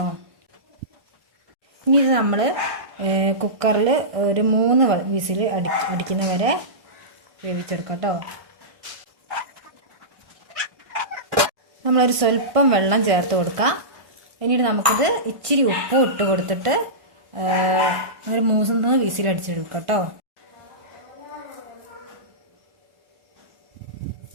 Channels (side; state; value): left; late; 1.5 ms